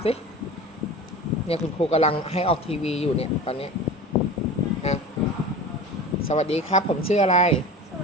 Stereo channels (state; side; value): normal; both; correlation 0.34